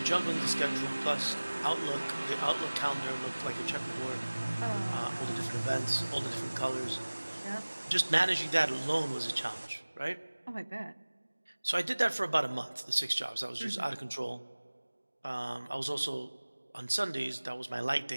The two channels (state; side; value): inverted; both; correlation -1.00